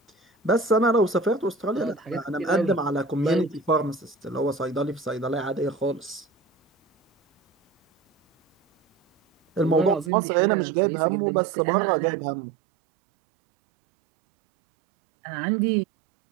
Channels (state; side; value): drops out; left; at 10.1 s